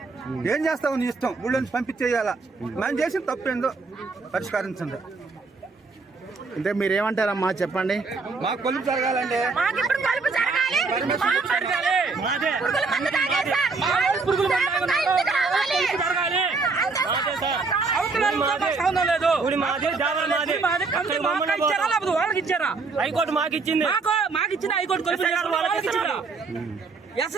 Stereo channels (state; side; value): quieter; left; 4.2 dB